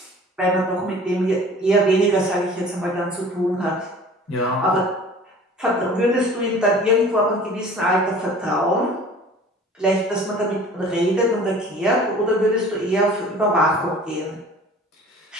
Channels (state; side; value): normal; both; correlation 0.46